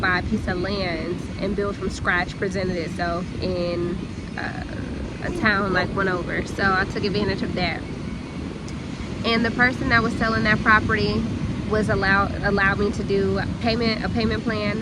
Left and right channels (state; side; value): identical; both; correlation 1.00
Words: a piece of land and build from scratch presented itself in a town like one over. So I took advantage of that, and the person that was selling that property was allowed me to do a payment